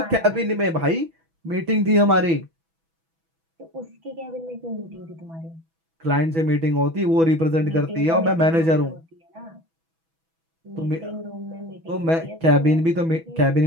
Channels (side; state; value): left; late; 6.1 ms